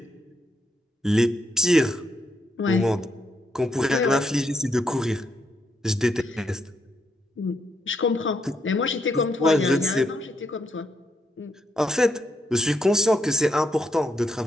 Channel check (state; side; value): normal; both; correlation 0.77